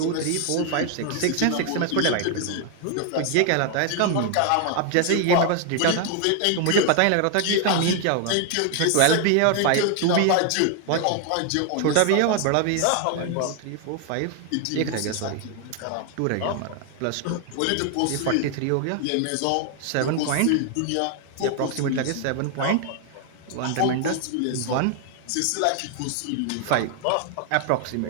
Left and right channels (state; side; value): different; both; correlation 0.00